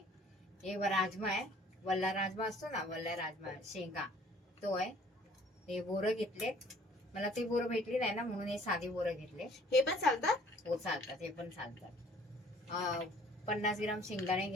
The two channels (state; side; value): normal; both; correlation 0.56